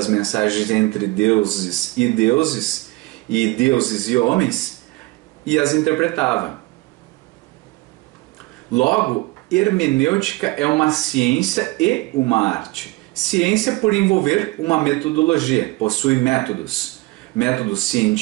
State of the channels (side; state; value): left; quieter; 22.0 dB